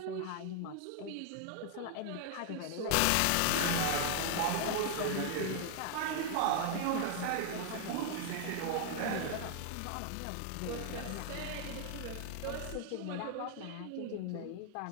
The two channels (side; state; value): both; different; correlation 0.00